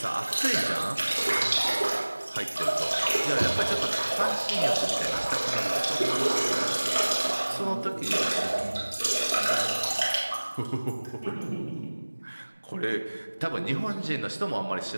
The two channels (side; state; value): both; inverted; correlation -1.00